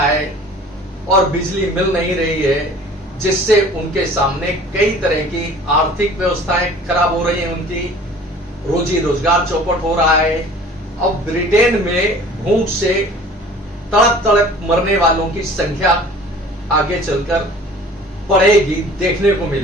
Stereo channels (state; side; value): normal; both; correlation 0.47